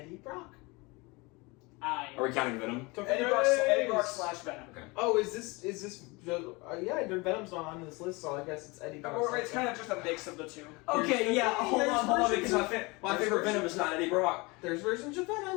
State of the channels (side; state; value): right; quieter; 25.7 dB